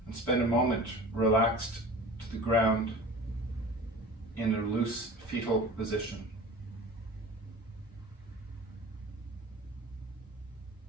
and spend a moment relaxed to the ground in a loose fetal position.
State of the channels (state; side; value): normal; both; correlation 0.38